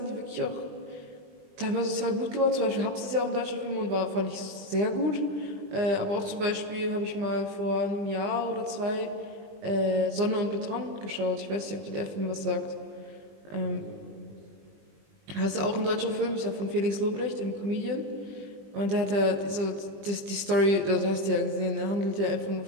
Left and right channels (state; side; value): late; left; 20 ms